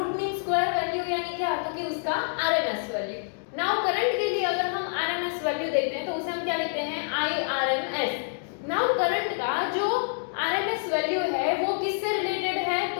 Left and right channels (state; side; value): silent; right; digital silence